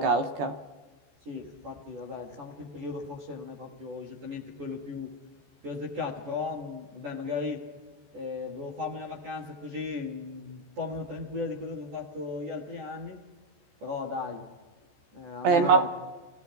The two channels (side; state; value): left; late; 14 ms